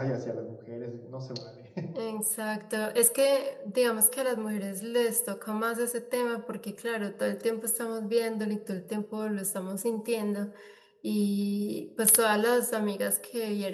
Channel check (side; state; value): both; identical; correlation 1.00